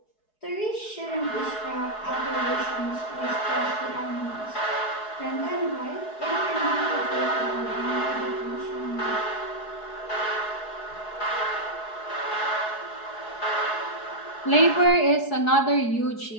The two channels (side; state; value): right; late; 4.7 ms